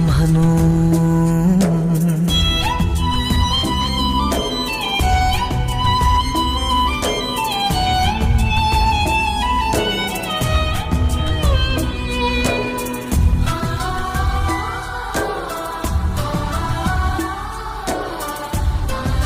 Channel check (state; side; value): identical; both; correlation 1.00